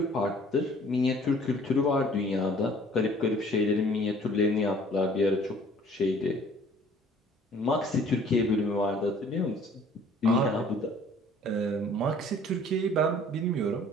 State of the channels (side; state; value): both; normal; correlation 0.54